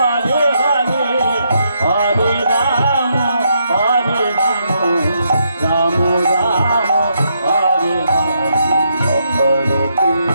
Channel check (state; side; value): inverted; both; correlation -0.77